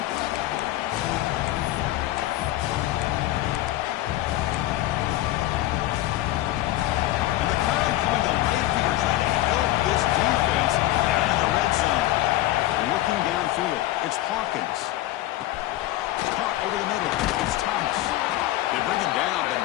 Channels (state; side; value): quieter; right; 15.6 dB